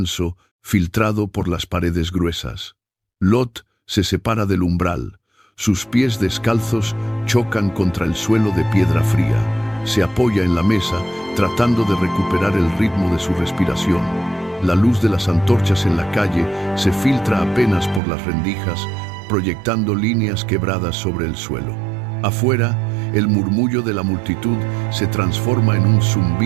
filtrado por las paredes gruesas. Lot se separa del umbral. Sus pies descalzos chocan contra el suelo de piedra fría. Se apoya en la mesa, tratando de recuperar el ritmo de su respiración. La luz de las antorchas en la calle se filtra apenas por las rendijas, proyectando líneas quebradas sobre el suelo. Afuera, el murmullo de la multitud se transforma en un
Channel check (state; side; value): drops out; left; at 18.0 s